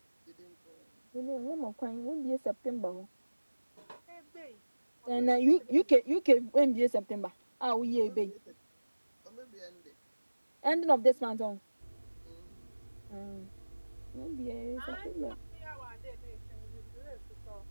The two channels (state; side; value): inverted; both; correlation -1.00